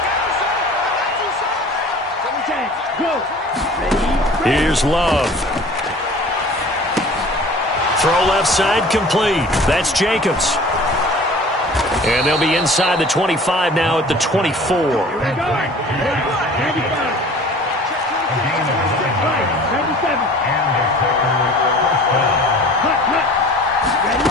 Here's Love. Throw left side complete. That's Jacobs. And they'll be inside the 25 now at the 24.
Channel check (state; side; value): normal; both; correlation 0.45